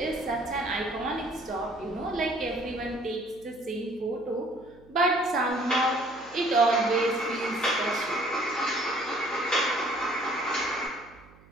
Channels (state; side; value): noise; right; hum, 25 dB below the sound